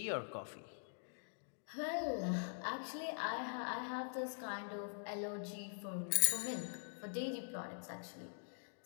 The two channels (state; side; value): silent; right; digital silence